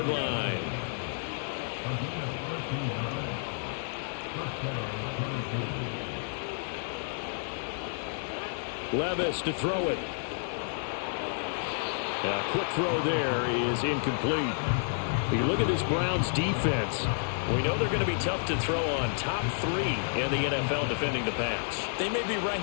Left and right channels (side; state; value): right; silent; digital silence